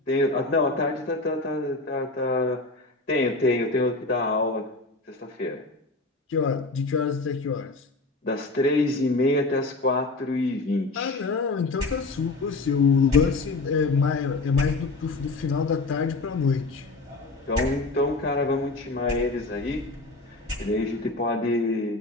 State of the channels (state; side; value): quieter; right; 3.3 dB